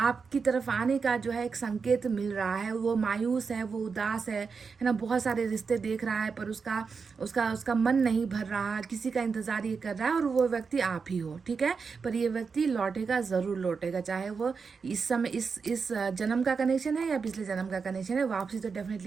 तरफ आने का जो है एक संकेत मिल रहा है। वो मायूस है, वो उदास है ना, बहुत सारे रिश्ते देख रहा है पर उसका मन नहीं भर रहा, किसी का इंतजार ये कर रहा है और वो व्यक्ति आप ही हो, ठीक है। पर ये व्यक्ति लौटेगा, ज़रूर लौटेगा, चाहे वो इस समय इस जन्म का कनेक्शन है या पिछले जन्म का कनेक्शन है। वापसी तो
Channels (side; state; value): left; quieter; 5.3 dB